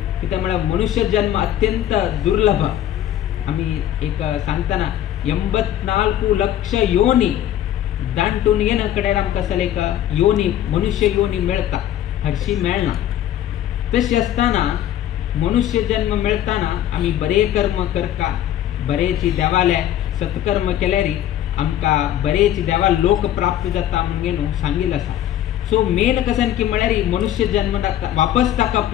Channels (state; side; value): quieter; right; 11.7 dB